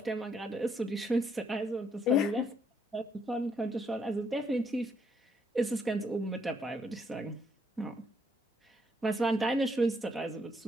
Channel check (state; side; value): normal; both; correlation 0.72